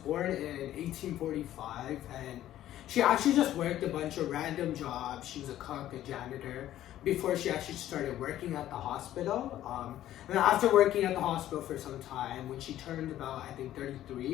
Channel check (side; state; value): right; quieter; 12.9 dB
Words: in 1845, and she actually just worked a bunch of random jobs. She was a cook, a janitor, before she actually started working at the hospital. And then after working at the hospital for some time, when she turned about, I think,